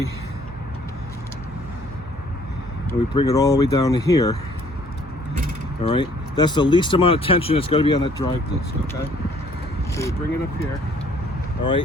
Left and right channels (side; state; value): right; noise; hum, 16 dB below the sound